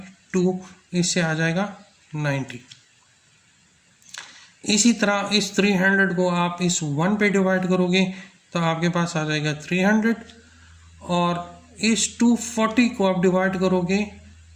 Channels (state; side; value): identical; both; correlation 1.00